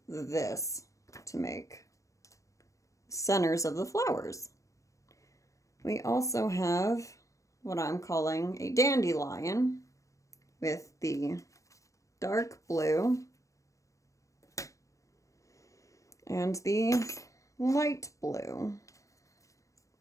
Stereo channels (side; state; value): right; late; 0.15 ms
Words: this to make centers of the flowers. We also have what I'm calling a dandelion with the dark blue and the light blue.